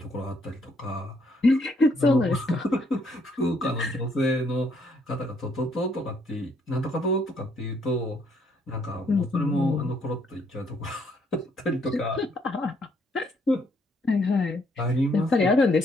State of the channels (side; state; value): both; normal; correlation 0.69